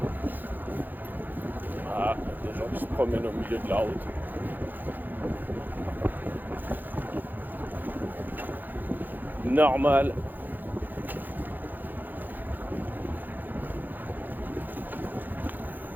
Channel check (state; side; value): late; left; 0.087 ms